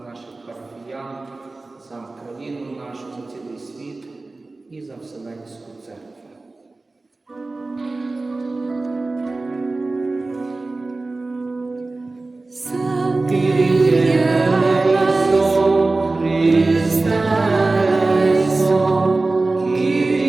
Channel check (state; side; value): quieter; left; 3.3 dB